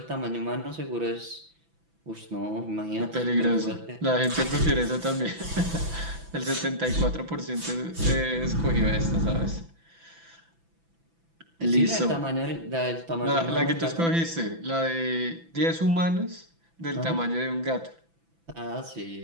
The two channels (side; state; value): left; late; 6.0 ms